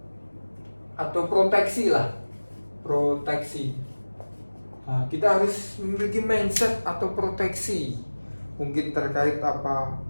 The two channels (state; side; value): inverted; both; correlation -1.00